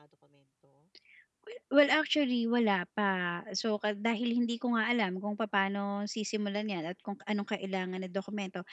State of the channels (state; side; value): identical; both; correlation 1.00